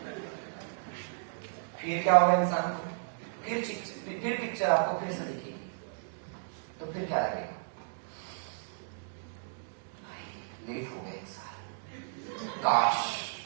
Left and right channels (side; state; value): left; silent; digital silence